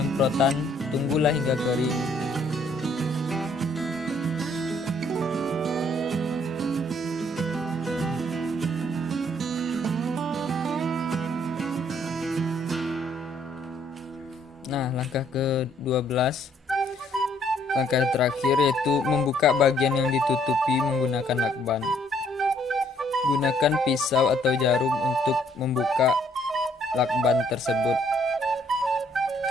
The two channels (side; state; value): both; normal; correlation 0.65